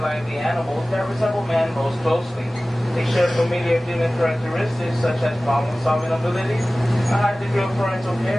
lively animals that resemble man most closely. They share familiar human characteristics such as problem-solving abilities, a high degree of parental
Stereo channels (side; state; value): both; normal; correlation 0.97